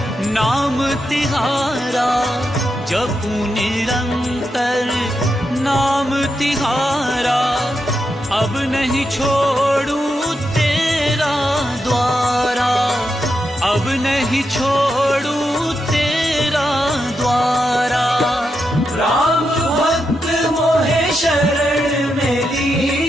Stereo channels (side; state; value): both; normal; correlation 0.85